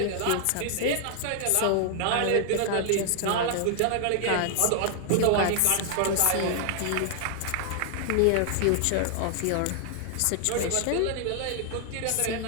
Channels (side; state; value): both; different; correlation 0.00